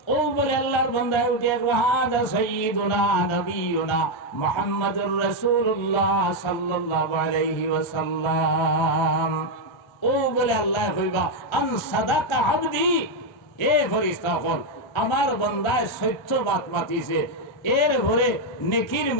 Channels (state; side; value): late; right; 1.3 ms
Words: ও বলে আল্লাহর বান্দা উঠে হাদা সাইয়্যিদুনা নবিয়ুনা মুহাম্মাদুর রাসূলুল্লাহ সাল্লাল্লাহু আলাইহি ওয়াসাল্লাম। ও বলে আল্লাহ কইবা আন সাদাকা আবদি, এ ফেরেশতা হল আমার বান্দায় সত্যবাদ মাতিছে। এর ভরে নেকির